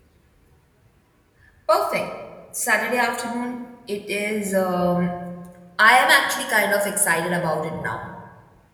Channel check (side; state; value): both; identical; correlation 1.00